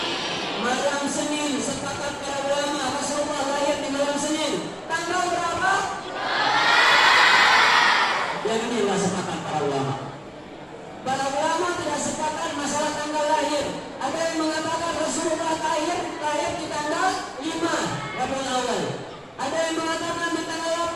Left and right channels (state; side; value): identical; both; correlation 1.00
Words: Malam Senin. Sepakat para ulama Rasulullah lahir di malam Senin. Tanggal berapa? Yang ini nggak sepakat para ulama. Para ulama tidak sepakat masalah tanggal lahir. Ada yang mengatakan Rasulullah lahir di tanggal 5 Rabiul Awal. Ada yang mengatakan di tanggal